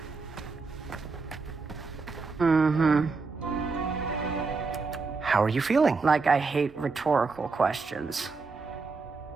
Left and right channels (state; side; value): quieter; left; 4.3 dB